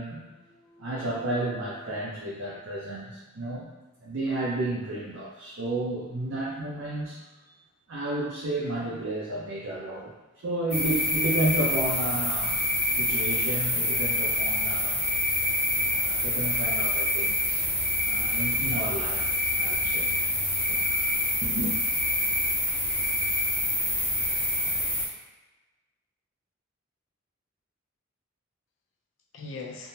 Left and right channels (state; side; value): normal; both; correlation 0.24